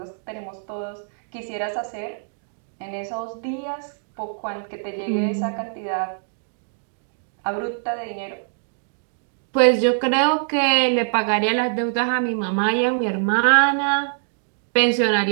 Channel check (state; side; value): silent; left; digital silence